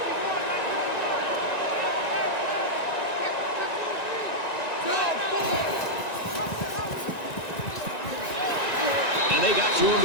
And they got to him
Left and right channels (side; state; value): right; late; 1.9 ms